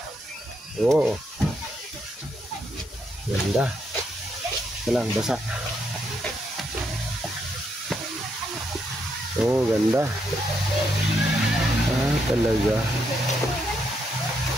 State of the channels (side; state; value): both; normal; correlation 0.78